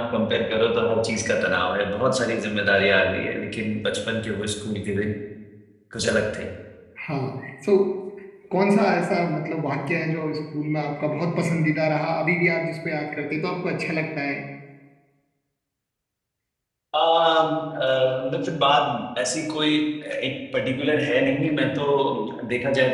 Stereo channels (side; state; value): both; identical; correlation 1.00